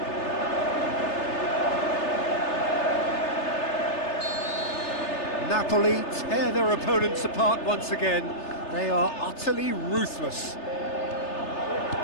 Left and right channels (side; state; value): right; late; 3.3 ms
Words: Napoli tear their opponents apart once again. They are utterly ruthless.